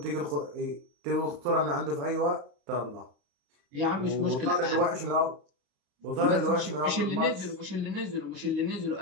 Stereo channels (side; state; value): left; late; 35 ms